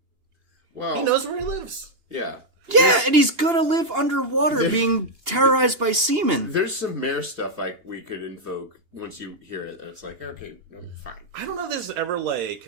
Well, he knows where he lives. Yeah. Yeah, and he's gonna live underwater being terrorized by seamen. There's some mayor stuff like we could invoke once you hear it. It's like, okay, fine. I don't know if this is ever,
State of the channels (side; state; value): left; late; 2.8 ms